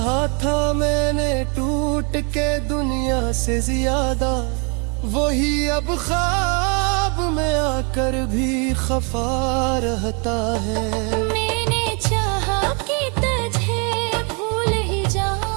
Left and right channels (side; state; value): left; quieter; 35.1 dB